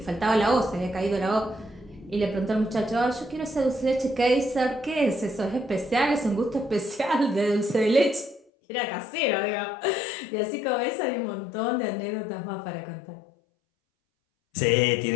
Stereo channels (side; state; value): right; drops out; at 8.4 s